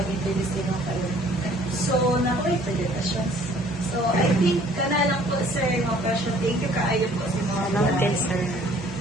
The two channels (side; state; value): both; normal; correlation 0.56